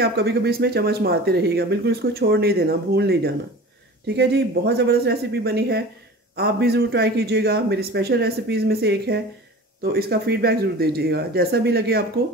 आप कभी कभी इसमें चम्मच मारते रहिएगा, बिल्कुल इसको छोड़ नहीं देना, भूल नहीं जाना। ठीक है जी, बहुत ज़बरदस्त रेसिपी बनी है, आप भी ज़रूर ट्राई कीजिएगा। मेरी स्पेशल रेसिपीज़ में से एक है, तो इसका फीडबैक ज़रूर दीजिएगा। जैसा भी लगे आपको,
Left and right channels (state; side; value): normal; both; correlation 0.38